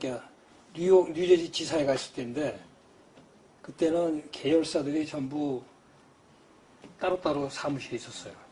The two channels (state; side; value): identical; both; correlation 1.00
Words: 뉴저지 지사에 갔을 때인데 그때는 계열사들이 전부 따로따로 사무실이 있었어요.